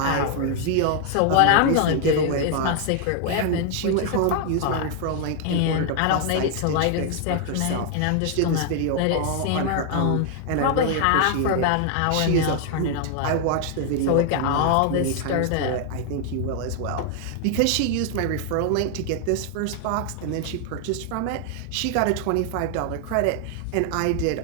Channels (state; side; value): different; both; correlation 0.00